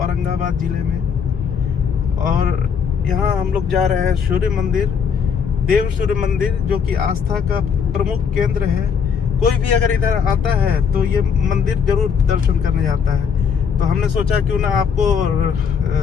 जिले में, और यहाँ हम लोग जा रहे हैं सूर्य मंदिर, देव सूर्य मंदिर, जो कि आस्था का प्रमुख केंद्र है। कोई भी अगर इधर आता है तो ये मंदिर जरूर दर्शन करने जाता है। तो हमने सोचा क्यों ना आपको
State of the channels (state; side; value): quieter; right; 6.8 dB